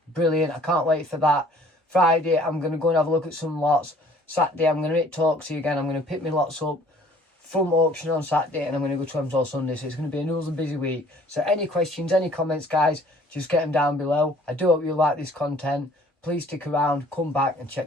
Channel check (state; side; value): normal; both; correlation 0.55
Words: Brilliant. I can't wait for that. Friday, I'm going to go and have a look at some lots. Saturday, I'm going to hit Talksy again. I'm going to pick my lots up. front auction on Saturday, and I'm going to go to hemswell Sunday, so it's going to be another busy week. So any questions, any comments, guys, just get them down below. I do hope you like this content. Please stick around, come back and